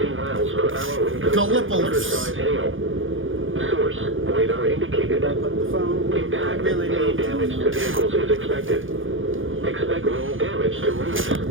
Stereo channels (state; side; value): late; left; 0.58 ms